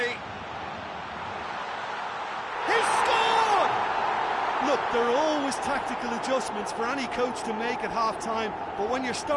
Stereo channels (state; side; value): identical; both; correlation 1.00